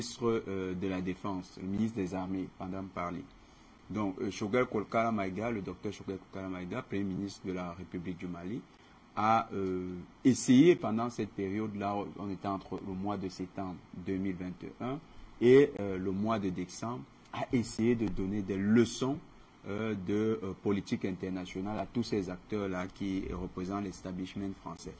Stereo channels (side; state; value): both; identical; correlation 1.00